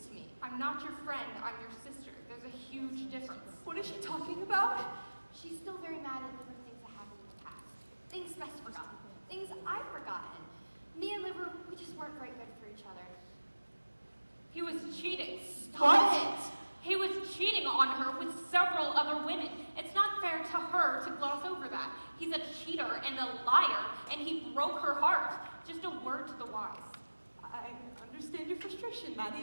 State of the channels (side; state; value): both; inverted; correlation -1.00